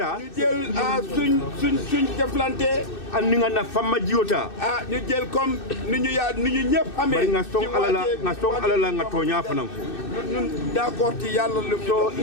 ñu jël suñ jëflante andi ngana famma jiota ñu jël comme ni ñu ñëpp amee bari nga song alala nga toña fanam ñun d'accord ci yàlla lu so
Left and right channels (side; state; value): right; late; 2.6 ms